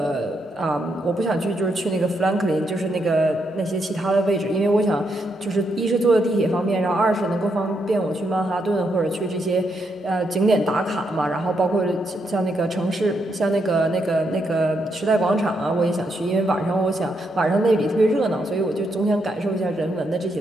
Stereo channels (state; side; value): normal; both; correlation 0.79